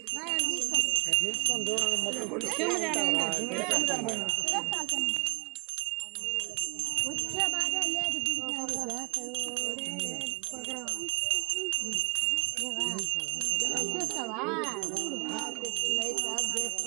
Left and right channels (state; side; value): quieter; left; 30.5 dB